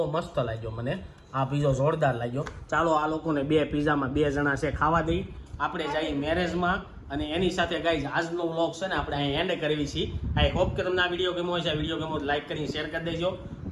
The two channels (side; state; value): both; identical; correlation 1.00